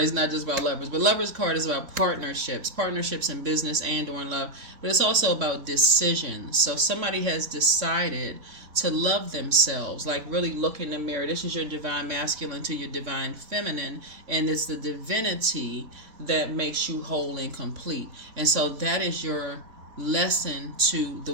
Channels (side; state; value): left; late; 3.5 ms